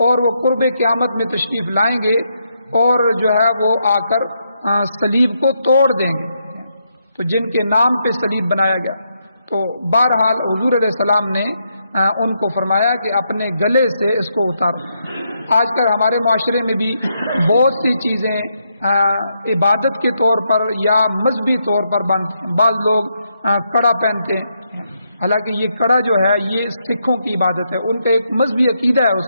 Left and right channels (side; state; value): both; inverted; correlation -0.79